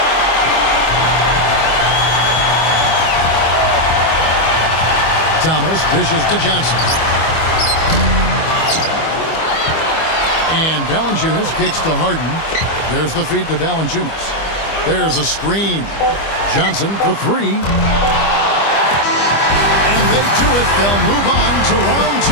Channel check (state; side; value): late; right; 25 ms